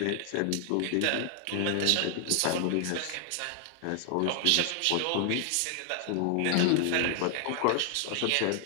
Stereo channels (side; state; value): both; different; correlation 0.00